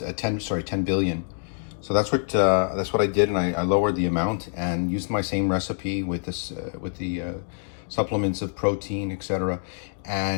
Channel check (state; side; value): silent; right; 61 dB below the other